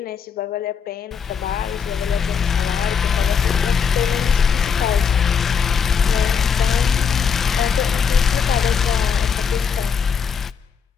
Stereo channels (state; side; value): quieter; right; 6.6 dB